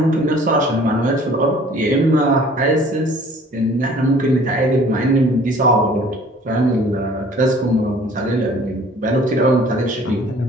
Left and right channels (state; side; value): normal; both; correlation 0.52